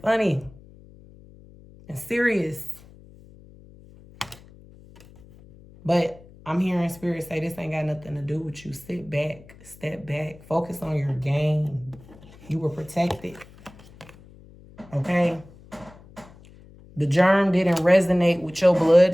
funny and serious. But I'm hearing spirit say this ain't got nothing to do with you. Sit back, step back, focus on your game. You were protected. Okay? The germ didn't resonate with your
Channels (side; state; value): left; noise; hum, 23 dB below the sound